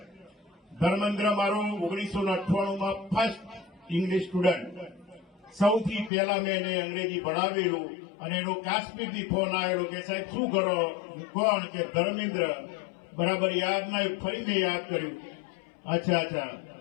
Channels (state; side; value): drops out; right; at 6.1 s